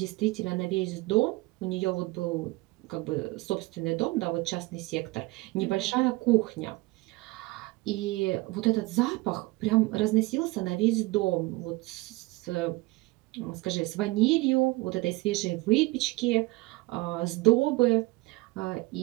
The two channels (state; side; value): quieter; left; 21.8 dB